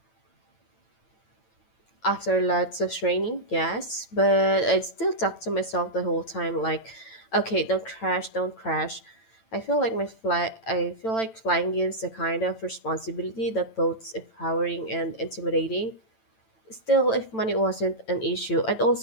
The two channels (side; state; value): right; late; 9.0 ms